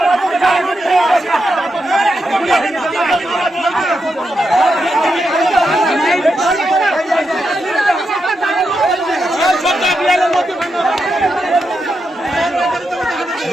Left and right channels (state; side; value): normal; both; correlation 0.85